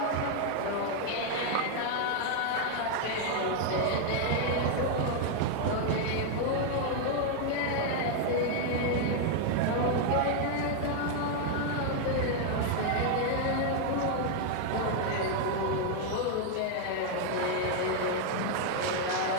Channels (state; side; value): different; both; correlation 0.00